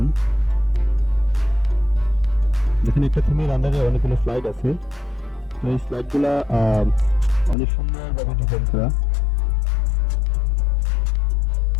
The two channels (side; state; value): right; drops out; at 7.6 s